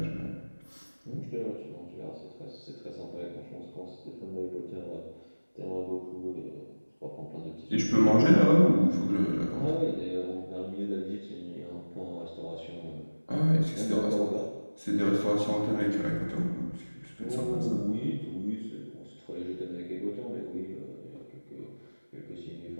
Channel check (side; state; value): both; inverted; correlation -1.00